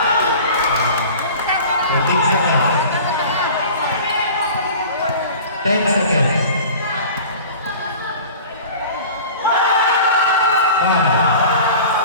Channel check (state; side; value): inverted; both; correlation -0.40